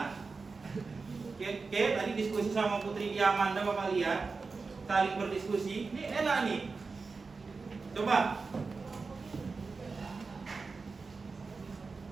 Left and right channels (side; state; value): left; quieter; 4.4 dB